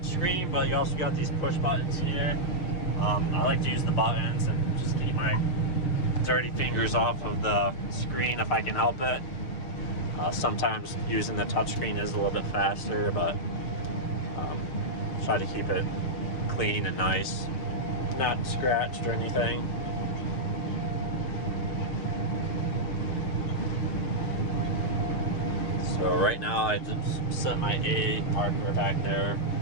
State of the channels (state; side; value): late; right; 6.5 ms